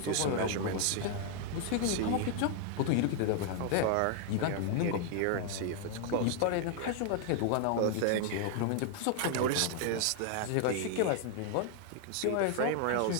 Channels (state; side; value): different; both; correlation 0.00